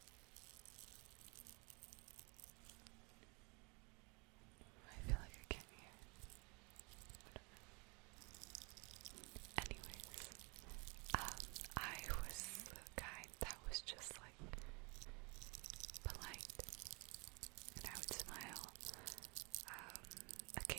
I feel like I can't hear. Anyways, I was the guy that was just like polite, and I would smile.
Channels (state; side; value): quieter; left; 30.7 dB